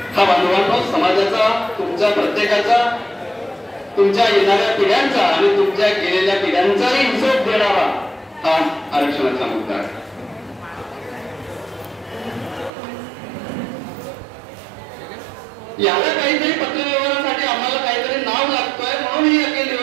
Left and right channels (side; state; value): left; drops out; at 12.7 s